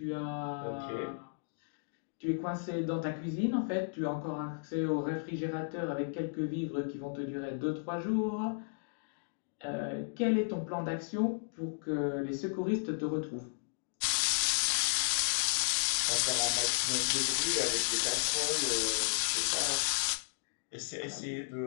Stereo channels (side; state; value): right; silent; digital silence